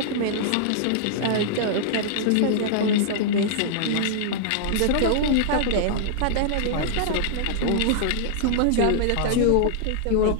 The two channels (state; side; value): different; both; correlation -0.01